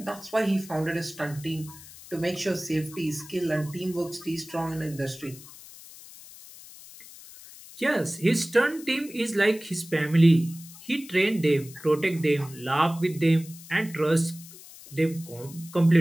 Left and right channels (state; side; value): noise; left; hiss, 18 dB below the sound